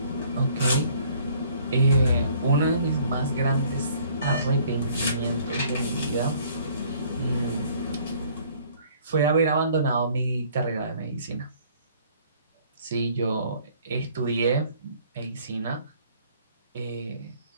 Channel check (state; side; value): inverted; both; correlation -0.58